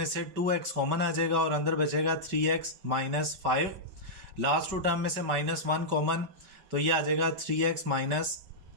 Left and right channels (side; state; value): left; late; 5.2 ms